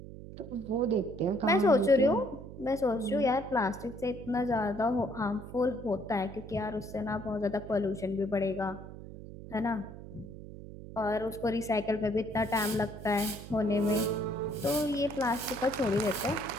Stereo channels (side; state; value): right; noise; hum, 13 dB below the sound